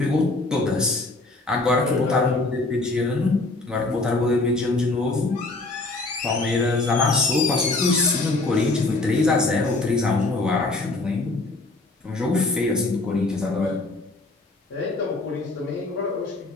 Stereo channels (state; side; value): quieter; right; 3.1 dB